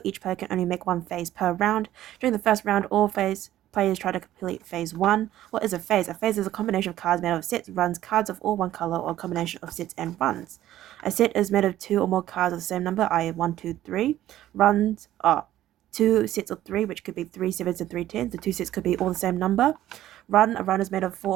Each player can only make 1 phase per round. During the first round, all phase players try to complete phase 1. What is a phase? A phase is a combination of cards made of sets, runs, cards of all one color, or a combination of sets and runs. A set is made of 2 or more cards of the same number, i.e. 1, 2, 3. Runs are 2 sets of 3, which could be 3 sevens and 3 tens. The 2 sets could be all the same number. A run is made of 4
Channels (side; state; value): left; quieter; 13.4 dB